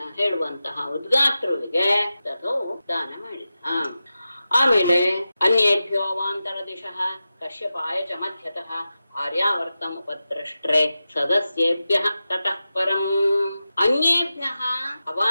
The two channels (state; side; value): inverted; both; correlation -0.92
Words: ಹೇಳುವಂತಹ ಉದ್ಗಾತ್ರುವಿಗೆ ತಥೋ ದಾನ ಮಾಡಿದ. ಆಮೇಲೆ ಅನ್ಯೇಭ್ಯೋ ಅವಾಂತರ ದಿಶಃ ಕಶ್ಯಪಾಯ ಚ ಮಧ್ಯತಃ ಆರ್ಯಾವರ್ತಂ ಉಪದ್ರಷ್ಟ್ರೆ ಸದಸ್ಯೇಭ್ಯಃ ತತಃ ಪರಂ. ಅನ್ಯೇಭ್ಯಃ